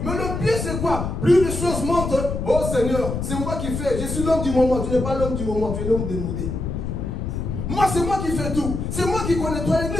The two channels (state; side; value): noise; left; rumble, 4 dB below the sound